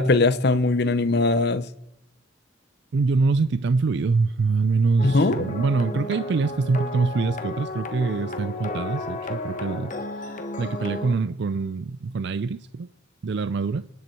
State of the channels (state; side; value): normal; both; correlation 0.58